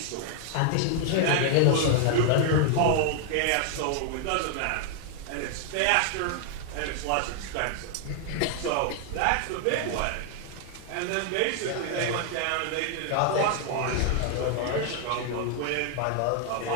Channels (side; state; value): both; different; correlation 0.00